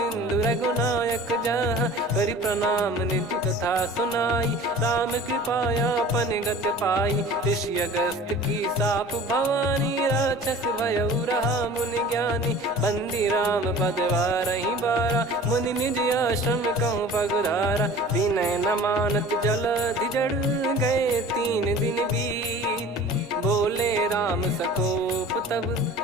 रघुनायक जहाँ। करि प्रणाम निज कथा सुनाई, राम कृपाया पन गत पाई। ऋषि अगस्त की साप भवानी, राक्षस भयउ रहा मुनि ज्ञानी। बंदी राम पद वारहि बारा, मुनि निज आश्रम कहूँ पगुधारा। विनय न मानत जलधि जड़, गए 3 दिन बीत। बोले राम सकोप तब,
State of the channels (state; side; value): normal; both; correlation 0.43